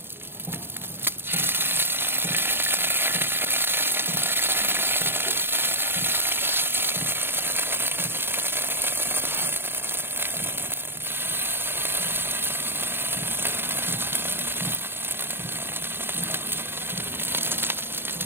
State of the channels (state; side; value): late; left; 0.11 ms